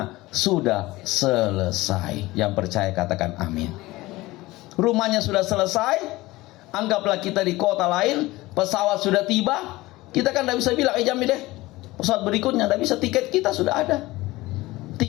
sudah selesai. Yang percaya katakan amin. Rumahnya sudah selesai. Anggaplah kita di kota lain, pesawat sudah tiba, kita kan tidak bisa bilang, Jamil deh, pesawat berikutnya, tidak bisa, tiket kita sudah ada.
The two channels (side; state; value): right; quieter; 19.3 dB